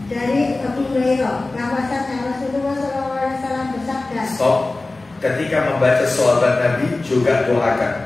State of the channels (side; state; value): right; quieter; 3.1 dB